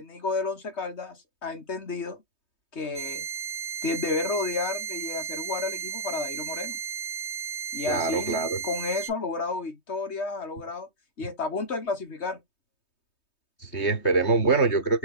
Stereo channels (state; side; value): late; right; 3.2 ms